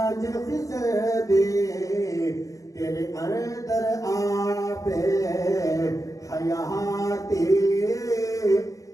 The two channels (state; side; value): late; right; 0.16 ms